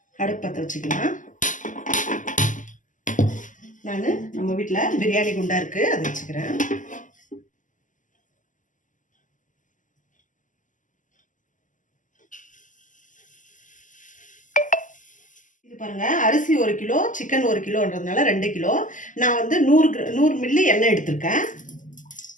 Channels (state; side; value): late; right; 0.37 ms